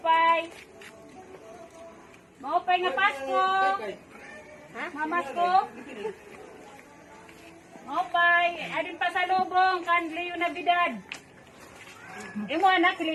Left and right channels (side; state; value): both; identical; correlation 1.00